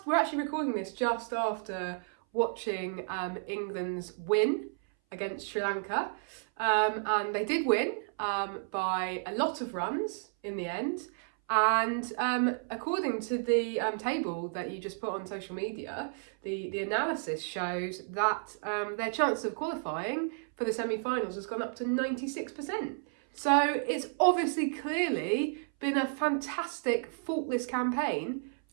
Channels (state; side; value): silent; left; 56 dB below the other